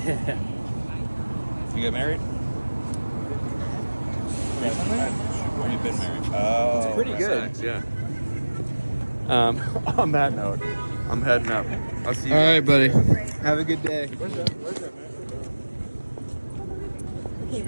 You get married? Recently? Or you've been married? Oh, it's pretty good. Nice, yeah. On that note, I'm heading up. I'll see you. All right, buddy. Have a good day. Where's that? Should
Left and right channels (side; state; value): both; inverted; correlation -1.00